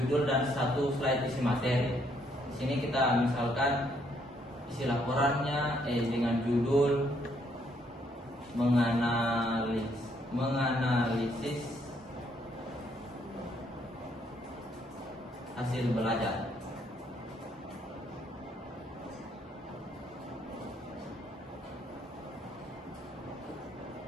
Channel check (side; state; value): both; normal; correlation 0.70